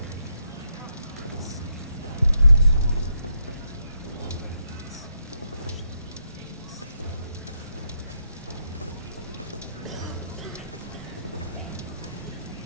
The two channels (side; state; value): both; inverted; correlation -0.79